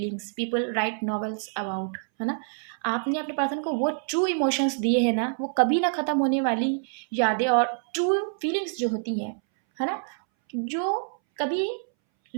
people write novels about, है ना। आपने अपने पर्सन को वो ट्रू इमोशंस दिए हैं ना, वो कभी ना ख़त्म होने वाली यादें और ट्रू फीलिंग्स जो होती हैं, है ना, जो कभी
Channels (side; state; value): left; silent; 61 dB below the other